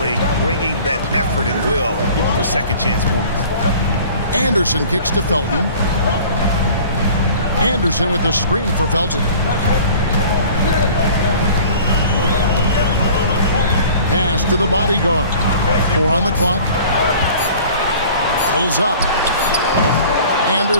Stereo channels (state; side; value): inverted; both; correlation -0.46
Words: bringing that effort and will for second chance points. Anderson kicks to Felton. Anderson with the screen for Felton. Pass to the bodyguard. 4 on the clock. Pulls up.